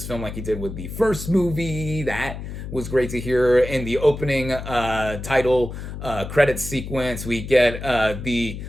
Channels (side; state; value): left; noise; hum, 8 dB below the sound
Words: film like he did with the first movie. That was great to hear. In the opening title credit sequence, we get the